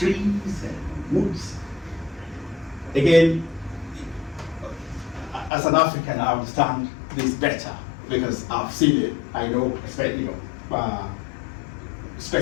and woods. Again, as an African, I understand this better because I've seen it. I know,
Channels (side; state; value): right; drops out; at 5.5 s